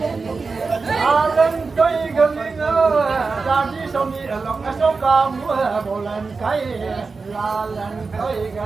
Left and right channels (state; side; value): quieter; left; 4.4 dB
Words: lalan toi galinga dadi somi alok asoka mua bolan kai lalan toi